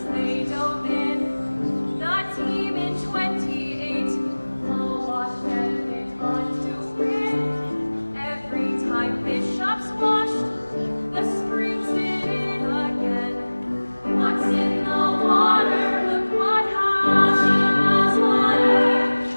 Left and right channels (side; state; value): both; inverted; correlation -1.00